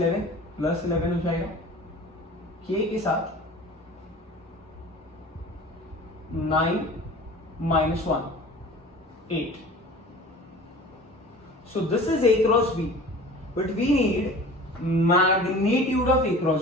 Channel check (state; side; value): normal; both; correlation 0.41